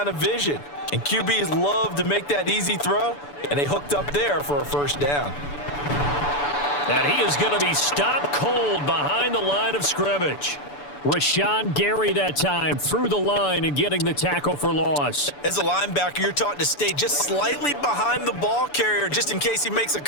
of vision. And QBs love to make that easy throw, and they hooked up there for a first down. And he is going to be stopped cold behind the line of scrimmage. Rashawn Gary that time through the line and getting the tackle for loss. As a linebacker, you're taught to stay just slightly behind the ball carrier just in case he makes a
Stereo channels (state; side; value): late; right; 6.9 ms